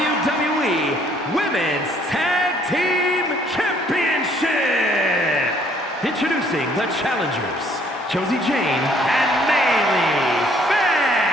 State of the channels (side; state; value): both; normal; correlation 0.62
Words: Women's Tag Team Championship. Introducing the challengers, Josie Jane and Maylee